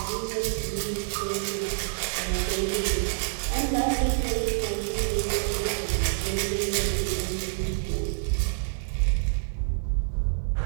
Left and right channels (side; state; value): left; silent; 60 dB below the other